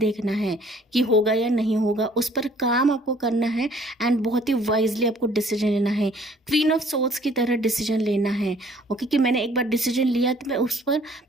है कि होगा या नहीं होगा, उस पर काम आपको करना है एंड बहुत ही वाइजली आपको डिसीजन लेना है, क्वीन ऑफ सोर्ड्स की तरह डिसीजन लेना है। ओके, कि मैंने एक बार डिसीजन लिया तो मैं उस पर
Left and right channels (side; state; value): both; normal; correlation 0.57